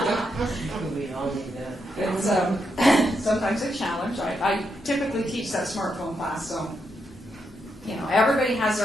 We all need that. It's sometimes a challenge. I typically teach that smartphone class, so everybody has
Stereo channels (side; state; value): both; normal; correlation 0.82